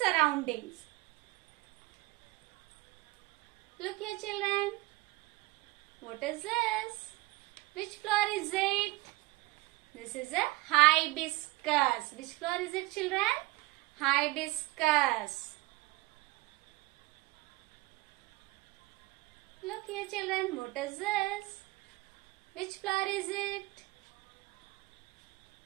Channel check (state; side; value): quieter; left; 21.3 dB